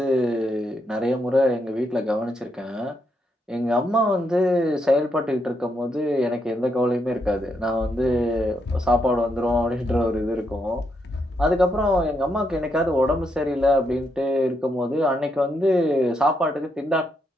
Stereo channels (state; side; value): normal; both; correlation 0.79